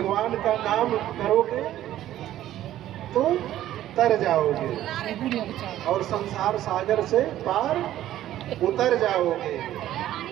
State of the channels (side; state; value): left; quieter; 13.1 dB